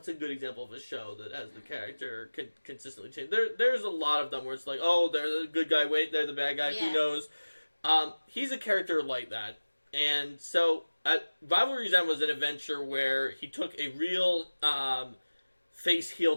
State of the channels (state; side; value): inverted; both; correlation -1.00